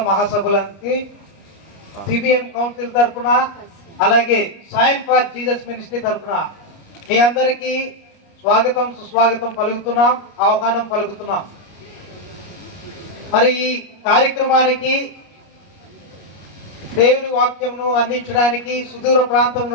మహాసభలకి సిబిఎం కౌన్సిల్ తరఫున అలాగే సైన్ ఫర్ జీసస్ మినిస్ట్రీ తరఫున మీ అందరికీ స్వాగతం సుస్వాగతం పలుకుతున్నాం, ఆహ్వానం పలుకుతున్నాం. మరి ఈ కార్యక్రమానికి దేవుని వాక్యంను అందించడానికి సుదూర ప్రాంతం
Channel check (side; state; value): right; late; 29 ms